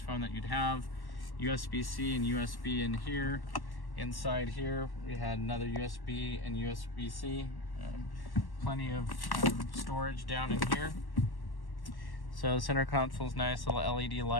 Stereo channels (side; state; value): right; late; 1.1 ms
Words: phone that you'd have. USB-C and USB in here. Inside here we had another USB and USB-C. Plenty of storage down in here. So the center console's nice, little LED